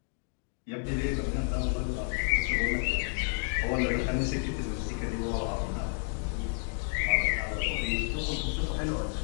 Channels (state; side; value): silent; right; 55 dB below the other